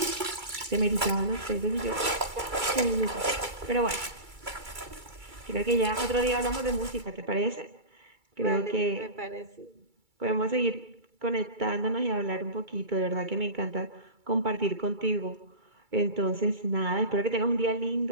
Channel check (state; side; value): late; left; 2.3 ms